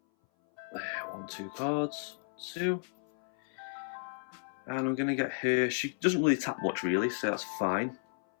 1, 2 cards. 2. And I'm going to get her. She doesn't really tap much, really, so that's fine.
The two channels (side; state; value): right; silent; 56 dB below the other